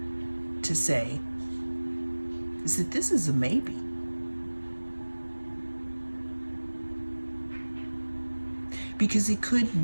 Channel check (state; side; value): inverted; both; correlation -1.00